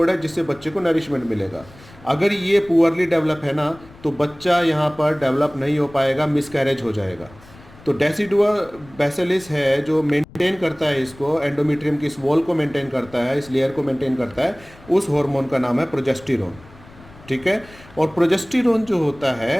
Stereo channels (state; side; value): noise; left; rumble, 22 dB below the sound